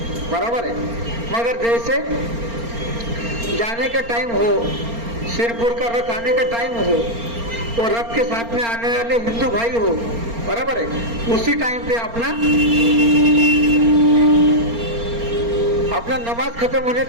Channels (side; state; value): left; late; 4.3 ms